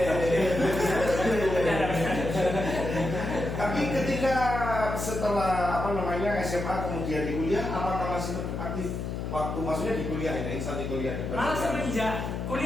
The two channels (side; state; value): left; noise; hum, 4 dB below the sound